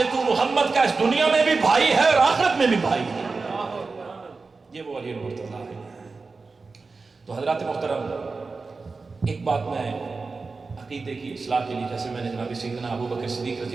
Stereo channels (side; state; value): left; quieter; 4.1 dB